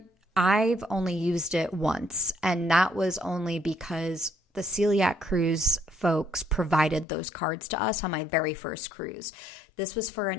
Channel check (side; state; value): right; drops out; at 7.1 s